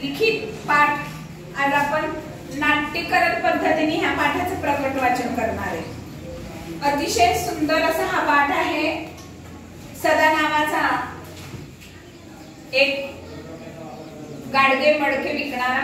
लिखित पाठ. आज आपण नाट्यकरण पद्धतीने ह्या पाठाचं प्रकट वाचन करणार आहे. अतिशय सुंदर असा हा पाठ आहे. सदा नावाचा एक गाडगे मडके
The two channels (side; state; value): both; identical; correlation 1.00